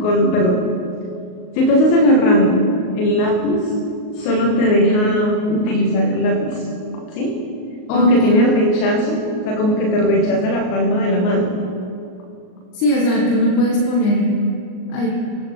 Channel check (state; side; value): late; right; 38 ms